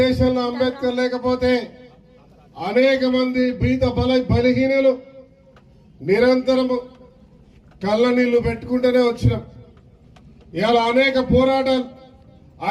అంబేద్కర్ లేకపోతే అనేక మంది బలహీనులు నిరంతరం కళ్ళ నీళ్లు పెట్టుకుంటూనే వచ్చినాం. ఇలా అనేక పోరాటాలు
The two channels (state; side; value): identical; both; correlation 1.00